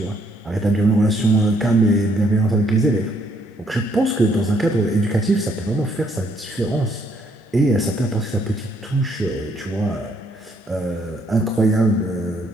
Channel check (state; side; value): normal; both; correlation 0.69